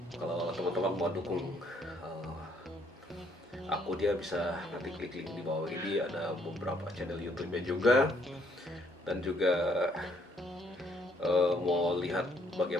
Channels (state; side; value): normal; both; correlation 0.68